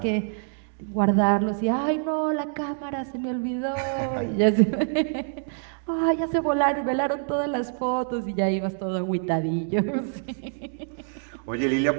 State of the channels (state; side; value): silent; left; digital silence